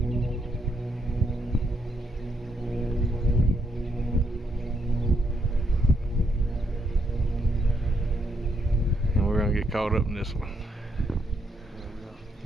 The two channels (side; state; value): both; normal; correlation 0.77